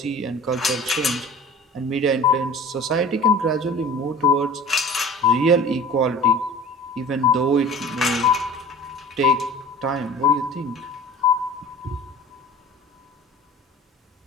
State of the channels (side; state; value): both; normal; correlation 0.41